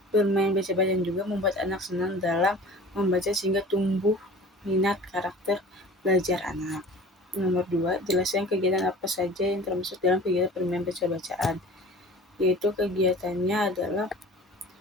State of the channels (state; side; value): normal; both; correlation 0.42